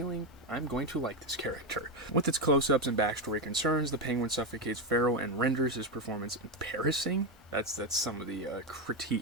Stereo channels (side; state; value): both; normal; correlation 0.10